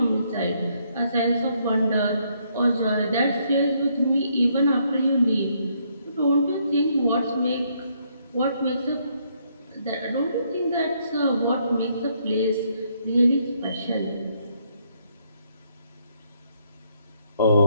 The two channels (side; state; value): both; inverted; correlation -0.72